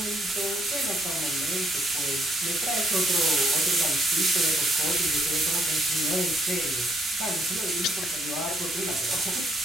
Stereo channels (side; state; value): both; normal; correlation 0.70